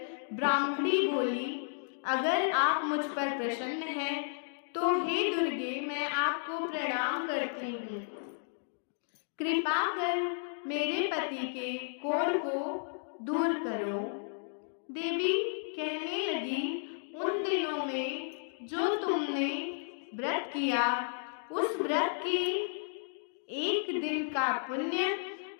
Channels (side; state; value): right; silent; digital silence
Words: ब्राह्मणी बोली, अगर आप मुझ पर प्रसन्न हैं तो हे दुर्गे, मैं आपको प्रणाम करती हूँ। कृपा कर मेरे पति के कोढ़ को दूर करो। देवी कहने लगी, उन दिनों में जो तुमने व्रत किया उस व्रत के एक दिन का पुण्य